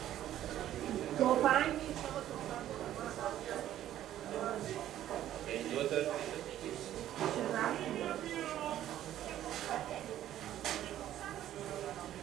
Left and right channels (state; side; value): quieter; left; 12.2 dB